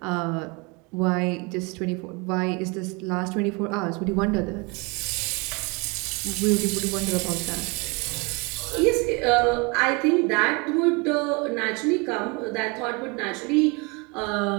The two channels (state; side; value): quieter; left; 29.2 dB